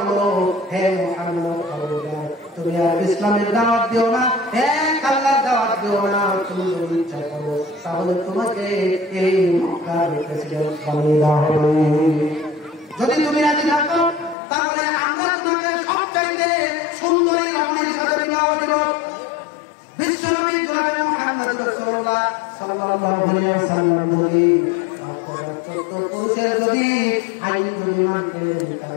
হে মুহাম্মদ খবরদার, তুমি আর ইসলামের দাওয়াত দিও না, এক আল্লাহর দাওয়াত দিও না। তুমি যদি ইচ্ছা করো তাহলে তোমাকে এই মক্কার প্রেসিডেন্ট বানিয়ে দেওয়া হবে। যদি তুমি রাজি থাকো তাহলে আমরা তোমাকে সবচাইতে সুন্দরী রমণীর সাথে বিবাহ দিব। বিশ্বনবী জনাবে মুহাম্মদ রাসূলুল্লাহ সাল্লাল্লাহু আলাইহি ওয়াসাল্লাম যদি আপনারা 14 পুরুষের যদি আইন যদি মানতেন,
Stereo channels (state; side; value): drops out; right; at 14.4 s